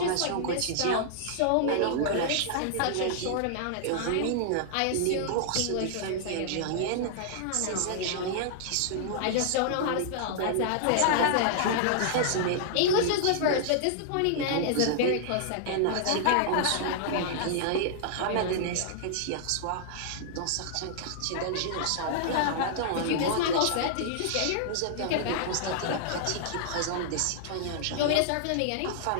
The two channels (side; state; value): both; different; correlation -0.01